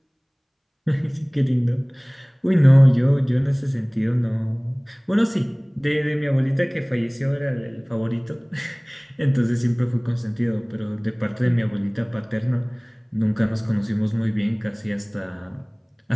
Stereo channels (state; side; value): identical; both; correlation 1.00